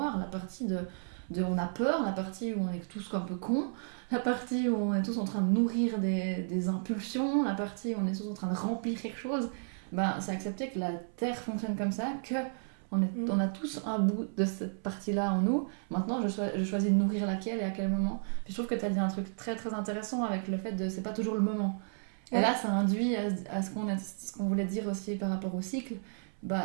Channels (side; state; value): left; silent; 56 dB below the other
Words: la partie de on a peur, la partie où on est tous un peu cons, la partie où on est tous en train de nourrir des impulsions, la partie où on est tous en train de remplir quelque chose. C'est accepter que la Terre fonctionne comme ça, on a tous un bout de cette partie-là en nous. Maintenant, je choisis de nourrir laquelle et à quel moment. Puis je trouve que tu as dit un truc très très intéressant avec le fait de c'est pas toujours le moment. Et là, ça induit à ce qu'on voulait dire aussi par rapport au cycle.